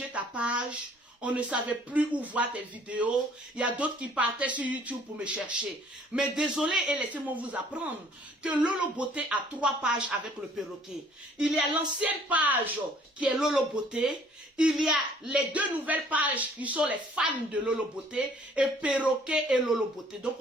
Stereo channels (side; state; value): both; normal; correlation 0.58